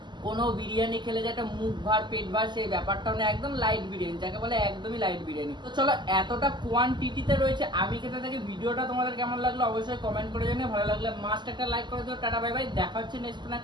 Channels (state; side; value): late; left; 0.21 ms